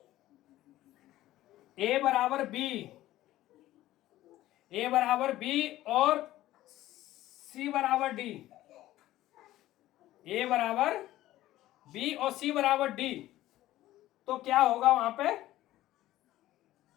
ए बराबर बी और सी बराबर डी, ए बराबर बी और सी बराबर डी, तो क्या होगा वहां पे,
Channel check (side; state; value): right; quieter; 15.0 dB